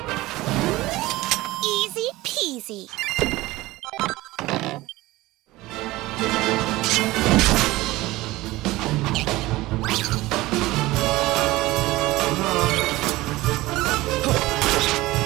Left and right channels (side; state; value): left; quieter; 18.9 dB